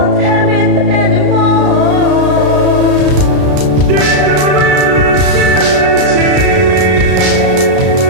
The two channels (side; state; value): left; late; 34 ms